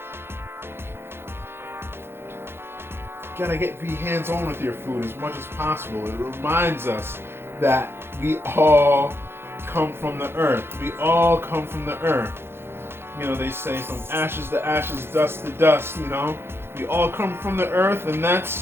You gotta be hands-on with your food as much as possible. It reminds us that we all come from the earth. We all come from the earth. They say from ashes to ashes, dust to dust, We all come from the earth, and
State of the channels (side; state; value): left; late; 0.11 ms